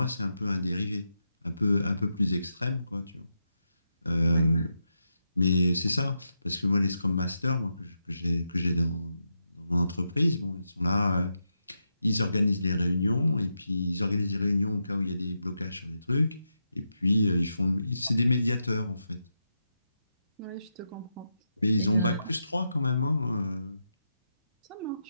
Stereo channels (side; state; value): both; inverted; correlation -0.86